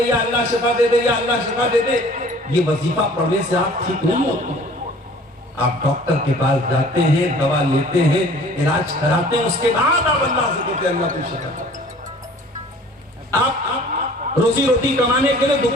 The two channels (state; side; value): normal; both; correlation 0.50